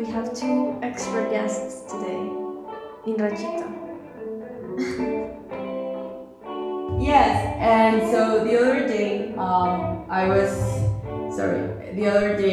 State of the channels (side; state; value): both; identical; correlation 1.00